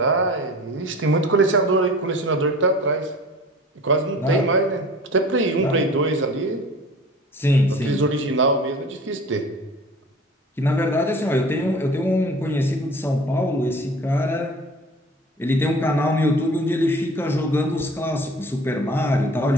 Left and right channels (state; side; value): normal; both; correlation 0.43